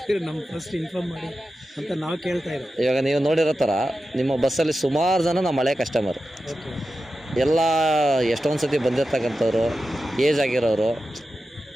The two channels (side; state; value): both; normal; correlation 0.92